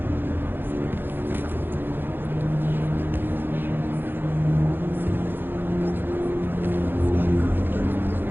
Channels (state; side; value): late; left; 0.099 ms